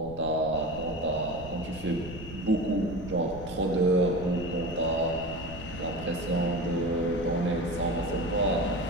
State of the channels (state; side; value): noise; right; rumble, 14 dB below the sound